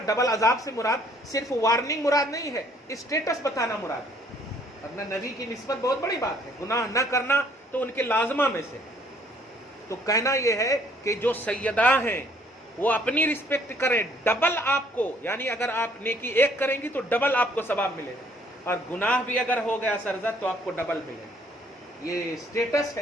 डबल अजाब से मुराद सिर्फ वार्निंग मुराद नहीं है, स्टेटस बताना मुराद है। अपना नबी की निस्बत बहुत बड़ी बात है, गुनाह न करना तो उनके लाजमा में से। तो कहना यह है कि जो सैयदा हैं वो अपनी रिस्पेक्ट करें, डबल आपको, यानी अगर आप नेकी एक करेंगी तो डबल आपको सवाब मिलेगा, और गुनाह भी अगर हो गया सरजद तो आपको डबल मिलेगा। ये स्टेटस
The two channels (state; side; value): normal; both; correlation 0.62